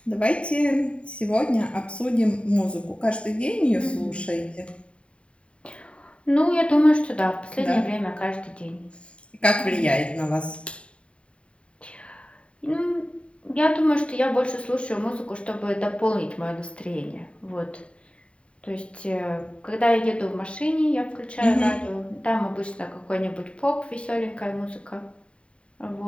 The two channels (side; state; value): right; late; 0.059 ms